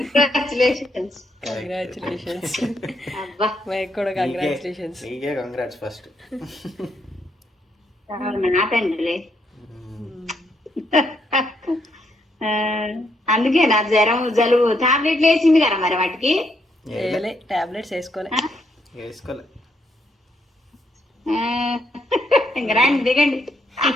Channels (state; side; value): normal; both; correlation 0.76